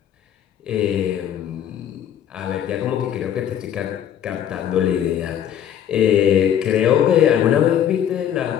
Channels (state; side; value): quieter; right; 9.8 dB